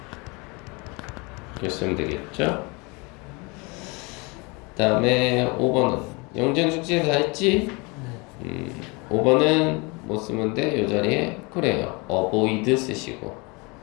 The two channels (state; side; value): quieter; right; 28.2 dB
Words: 이렇게 쓰면 되겠죠? 그 다음에 5번은 영전 숙제 다 했지? 5번은 뭐 쓰면 돼? 이 자리에 그래요. avoid 쓰시고